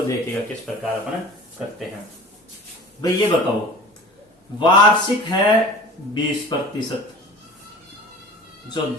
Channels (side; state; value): both; normal; correlation 0.40